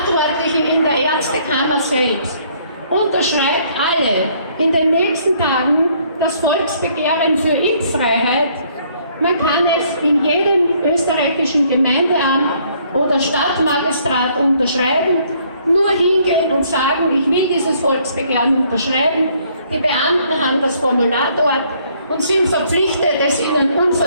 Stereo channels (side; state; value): both; inverted; correlation -0.64